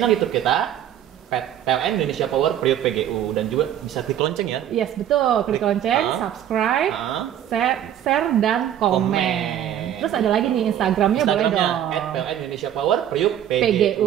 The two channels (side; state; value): left; quieter; 10.7 dB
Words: YouTube kita PLN Indonesia Power Priuk PGU, dan juga bisa klik lonceng ya. Yes, betul. Klik lonceng, subscribe, share, dan komen. Terus ada lagi nih Instagramnya boleh dong. @PLN Indonesia Power Priuk